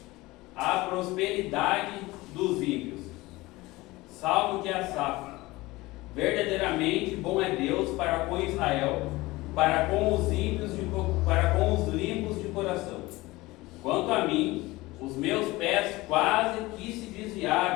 A prosperidade dos ímpios. Salmo de Asaf. Verdadeiramente bom é Deus para com Israel, para com os ímpios, para com os limpos de coração. Quanto a mim, os meus pés quase que se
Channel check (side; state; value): right; quieter; 20.3 dB